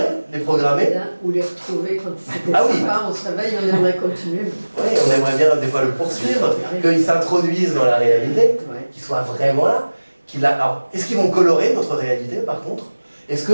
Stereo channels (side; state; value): both; inverted; correlation -1.00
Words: les programmer. Ou les retrouver quand c'était oui. sympa, on se réveille, on aimerait continuer. Oui, on aimerait bien des fois le poursuivre, qu'ils s'introduisent dans la réalité, qu'ils soient vraiment là. Alors, est-ce qu'ils vont colorer notre réalité par contre? Est-ce